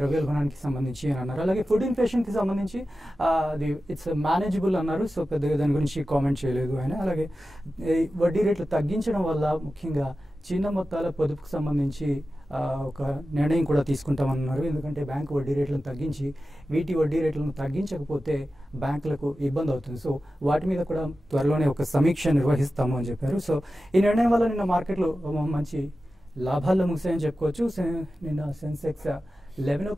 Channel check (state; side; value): normal; both; correlation 0.93